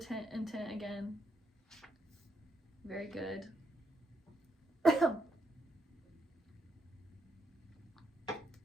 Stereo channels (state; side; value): normal; both; correlation 0.78